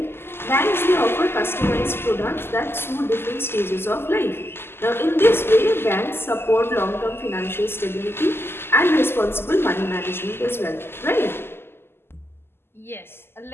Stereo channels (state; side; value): late; right; 0.12 ms